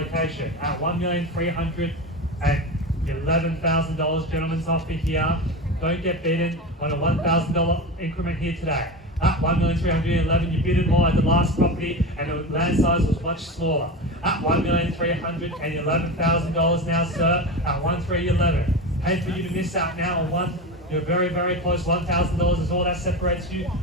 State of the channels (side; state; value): both; normal; correlation 0.24